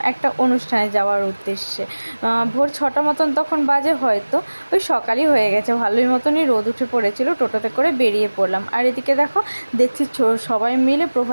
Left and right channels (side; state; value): both; inverted; correlation -1.00